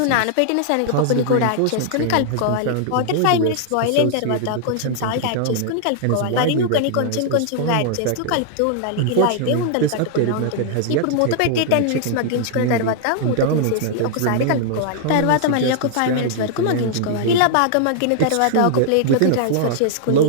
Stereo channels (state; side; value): different; both; correlation -0.01